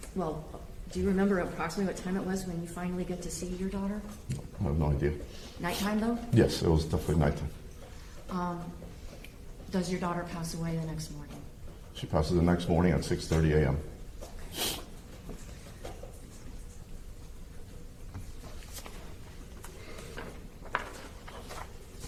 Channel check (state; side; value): identical; both; correlation 1.00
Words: do you remember approximately what time it was when you finally get to see your daughter? I have no idea. Nighttime though? Yes, it was definitely nighttime. Does your daughter pass away the next morning? She passes the next morning at 6:30 a.m.